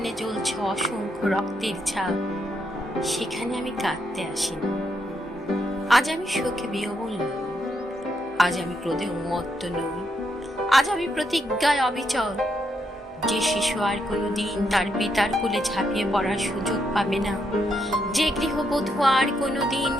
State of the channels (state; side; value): normal; both; correlation 0.79